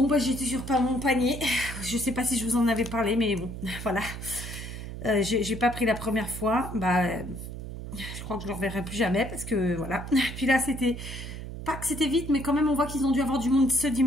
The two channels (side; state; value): right; noise; hum, 9 dB below the sound